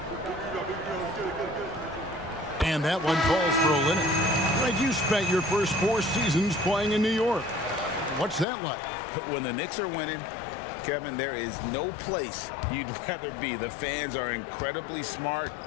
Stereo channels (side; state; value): right; drops out; at 8.5 s